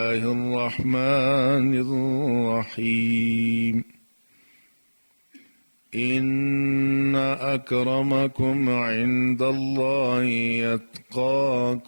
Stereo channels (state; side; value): inverted; both; correlation -1.00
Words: الرحمن الرحيم إن أكرمكم عند الله